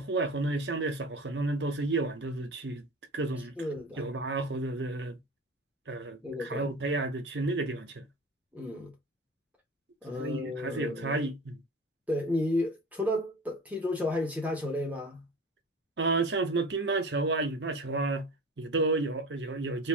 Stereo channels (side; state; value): both; normal; correlation 0.36